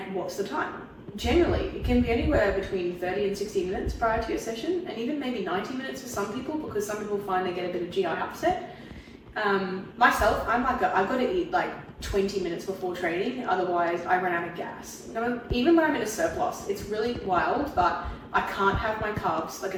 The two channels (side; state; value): both; identical; correlation 1.00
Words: what's the time? Generally, it can be anywhere between 30 and 60 minutes prior to your session, and even maybe 90 minutes for some people, because some people find they get a bit of GI upset. Myself, I'm like, I've got to eat like 20 minutes before training, otherwise I run out of gas. Even when I'm in a surplus, it's really wild, but I can't have my carbs like